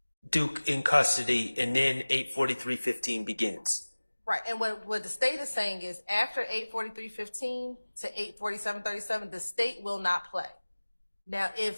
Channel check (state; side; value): inverted; both; correlation -1.00